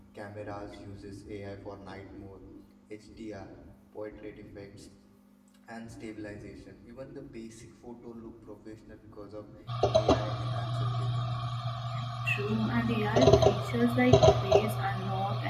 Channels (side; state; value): both; identical; correlation 1.00